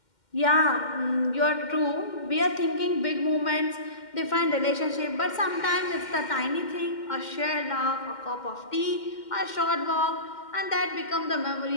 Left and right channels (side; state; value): right; late; 2.1 ms